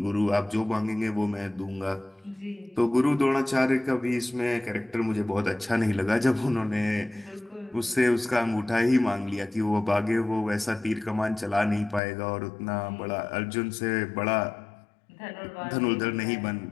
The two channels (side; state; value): right; drops out; at 12.0 s